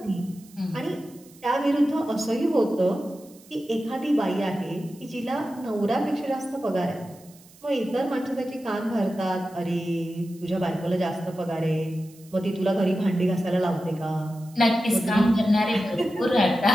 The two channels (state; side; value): noise; right; hiss, 25 dB below the sound